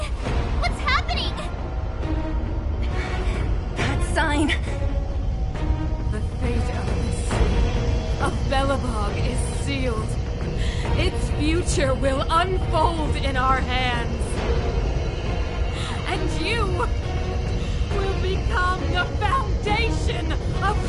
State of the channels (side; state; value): both; identical; correlation 1.00